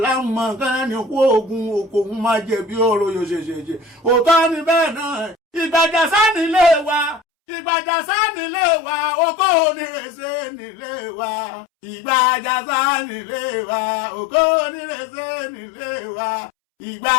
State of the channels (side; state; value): right; drops out; at 7.2 s